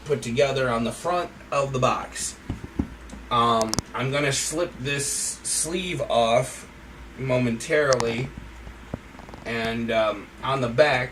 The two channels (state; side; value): identical; both; correlation 1.00